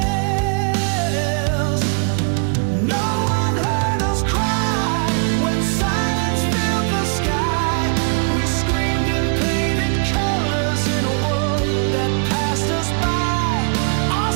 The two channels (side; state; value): left; quieter; 39.7 dB